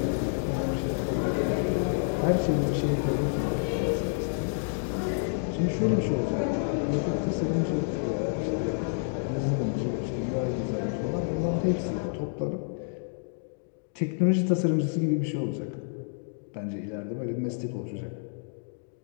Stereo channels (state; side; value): silent; right; digital silence